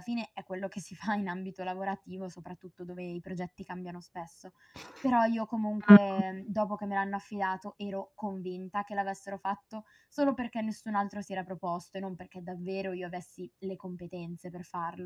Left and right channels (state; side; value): identical; both; correlation 1.00